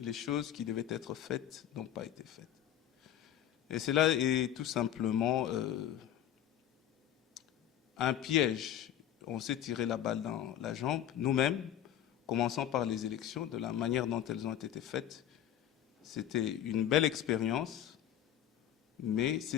choses qui devaient être faites n'ont pas été faites. Et cela est tout simplement un piège. On s'est tiré la balle dans la jambe, nous-mêmes, commençant par les élections, de la manière dont elles ont été faites. C'était une belle expérience, mais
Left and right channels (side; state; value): right; quieter; 10.9 dB